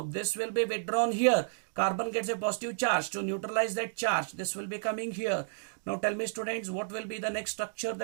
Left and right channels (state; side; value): silent; left; digital silence